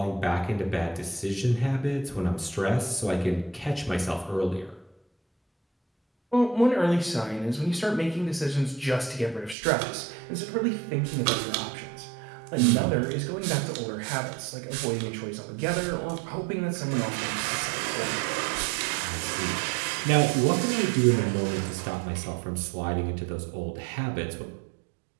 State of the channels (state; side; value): drops out; left; at 9.6 s